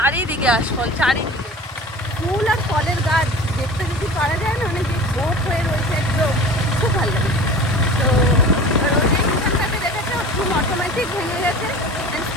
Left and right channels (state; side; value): normal; both; correlation 0.38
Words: আশফল, চারিদিকে ফুল আর ফলের গাছ দেখতে যদি পারা যায় না, অনেক ভোট হয়ে রয়েছে একদম, খুব ভালো লাগে। তো যে মিশানটাকে দেখেছে ঘুম অটোমেটিক ভেঙে গেছে।